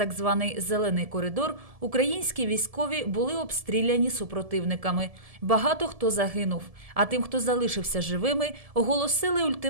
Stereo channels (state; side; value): late; left; 1.7 ms